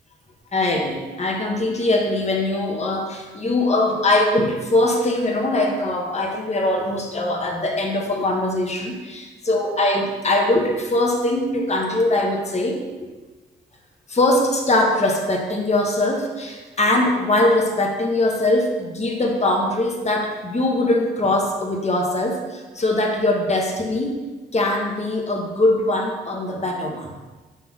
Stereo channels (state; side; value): normal; both; correlation 0.43